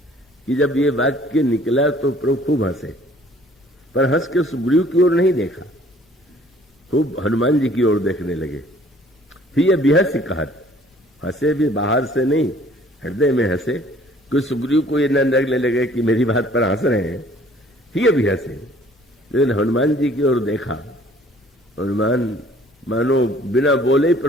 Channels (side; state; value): both; normal; correlation 0.56